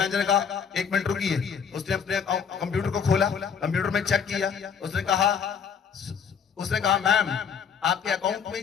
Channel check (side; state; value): right; quieter; 6.9 dB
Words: ने कहा, 1 मिनट रुकिए। उसने अपने कंप्यूटर को खोला, कंप्यूटर में चेक किया। उसने कहा मैम, आपके अकाउंट